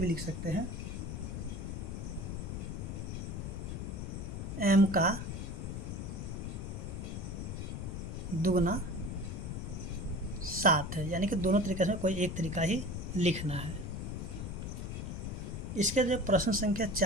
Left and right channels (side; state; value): left; noise; rumble, 5 dB below the sound